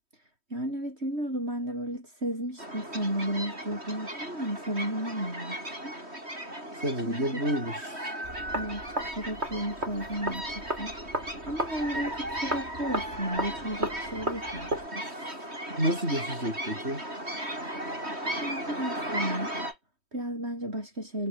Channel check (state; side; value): late; left; 3.1 ms